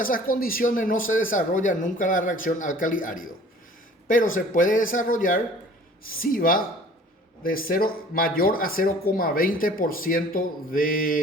esas condiciones, no se desarrolla nunca la reacción álcali-árido. Pero se puede desarrollar si va de mayor a 0,20%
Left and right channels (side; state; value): both; normal; correlation 0.49